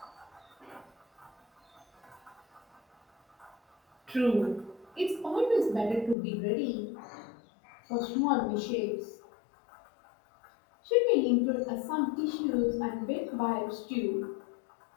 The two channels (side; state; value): right; drops out; at 6.2 s